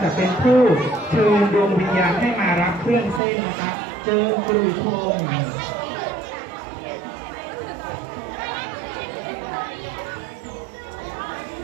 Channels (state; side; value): drops out; left; at 3.2 s